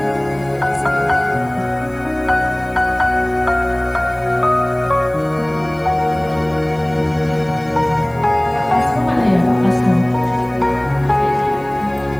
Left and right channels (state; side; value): noise; left; hiss, 29 dB below the sound